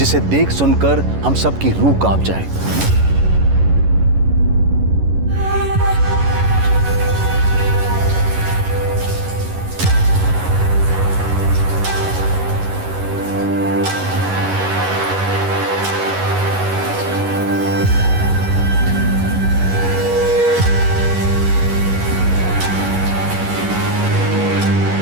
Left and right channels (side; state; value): left; late; 11 ms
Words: देख सुनकर हम सबकी रूह कांप जाए।